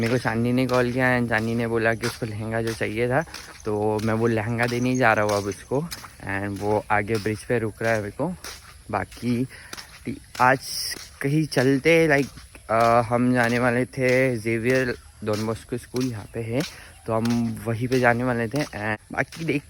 मेरे को चांदनी ने कॉल किया एंड चांदनी ने बोला कि उसको लहंगा जो चाहिए था, तो मैं वो लहंगा देने ही जा रहा हूँ अब उसको। एंड वो आगे ब्रिज पे रुक रहा है मेरे को। बाकी आज कहीं चलते लाइक हम जाने वाले थे जेवियर डॉन बॉस्को स्कूल, यहाँ पे है, तो हम वहीं पे जाने वाले थे। एंड बाकी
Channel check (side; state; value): both; identical; correlation 1.00